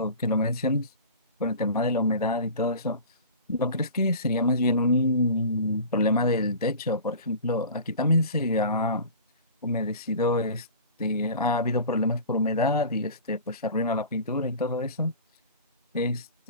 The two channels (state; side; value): inverted; both; correlation -0.38